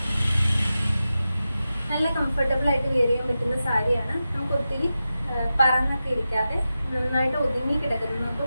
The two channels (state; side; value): inverted; both; correlation -0.92